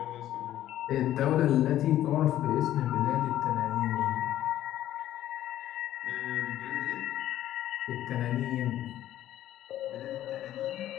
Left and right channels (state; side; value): quieter; right; 12.8 dB